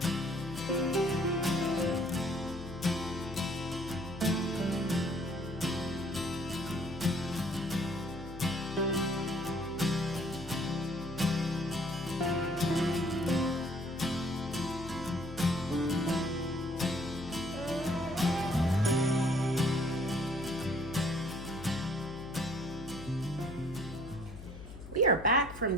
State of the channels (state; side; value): noise; left; hum, 13 dB below the sound